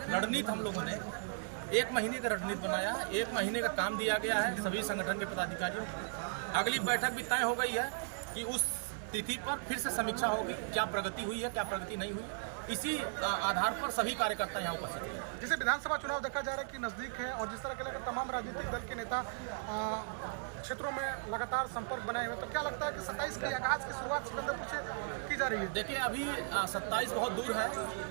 रणनीति हम लोगों ने 1 महीने का रणनीति बनाया है, 1 महीने का काम दिया गया है सभी संगठन के पदाधिकारियों को। अगली बैठक भी तय हो गई है कि उस तिथि पर फिर से समीक्षा होगी, क्या प्रगति हुई है, क्या प्रगति नहीं हुई है। इसी आधार पर सभी कार्यकर्ता यहाँ उपस्थित हैं। जैसे विधानसभा चुनाव देखा जा रहा है कि नजदीक है और जिस तरह के लेकर तमाम राजनीतिक दल के नेता क्षेत्रों में लगातार संपर्क बनाए हुए, तो क्या लगता है कि 27 की आगाज की शुरुआत सिकंदरपुर से की जा रही है? देखिए, अभी 27 बहुत दूर है,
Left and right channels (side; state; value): left; silent; 53 dB below the other